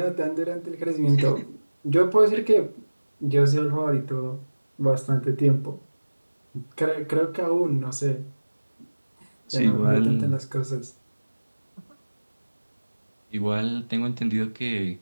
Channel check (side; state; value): both; inverted; correlation -1.00